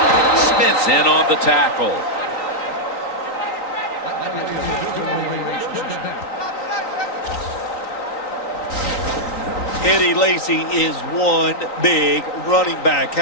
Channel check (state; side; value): late; right; 3.9 ms